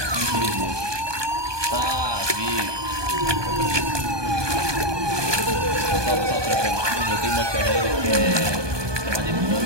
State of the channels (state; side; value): late; left; 1.2 ms